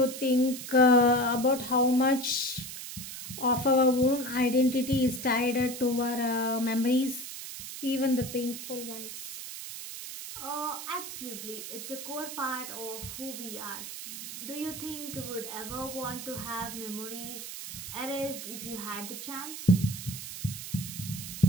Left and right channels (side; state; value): right; noise; hiss, 9 dB below the sound